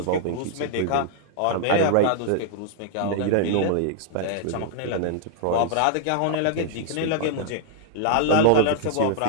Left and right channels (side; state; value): both; different; correlation -0.01